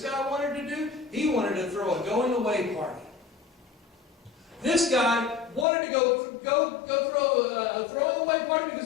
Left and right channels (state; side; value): drops out; right; at 5.7 s